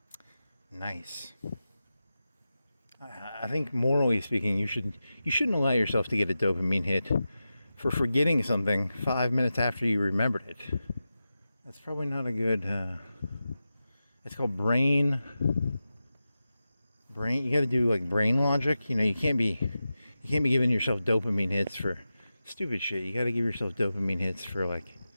Nice. I think morally speaking, you shouldn't allow yourself to get a dopamine hit for forgetting something 5 minutes after you remembered it. That's probably not a good. It's called brain. You got to do like brain logic. You know, you can't be giving yourself dopamine hits for stupid shit. You got to give yourself dopamine hits for like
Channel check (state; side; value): inverted; both; correlation -0.93